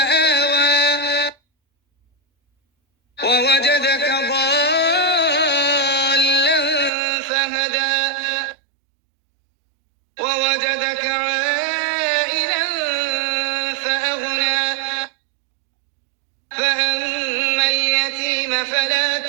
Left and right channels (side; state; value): left; drops out; at 6.9 s